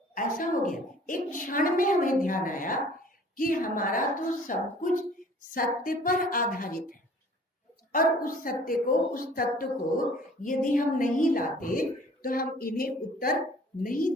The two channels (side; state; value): both; normal; correlation 0.52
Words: ऐसा हो गया, एक क्षण में हमें ध्यान आया कि हमारा तो सब कुछ सत्य पर आधारित है और उस सत्य को, उस तत्व को यदि हम नहीं लाते तो हम इन्हें उत्तर नहीं